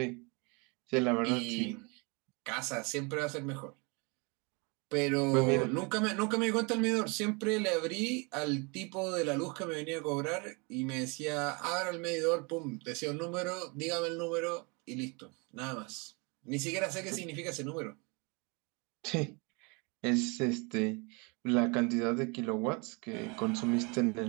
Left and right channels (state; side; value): quieter; left; 30.5 dB